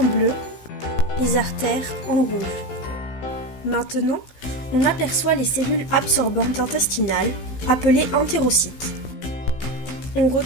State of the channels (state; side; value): late; right; 16 ms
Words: bleu, les artères en rouge. Maintenant, on aperçoit les cellules absorbantes intestinales, appelées entérocytes. On